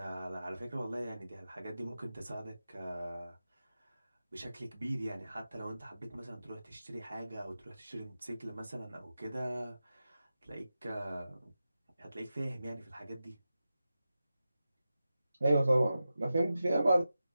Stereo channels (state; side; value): inverted; both; correlation -0.92